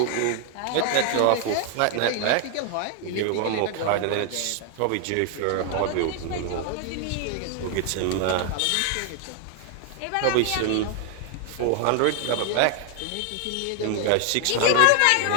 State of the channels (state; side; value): different; both; correlation 0.00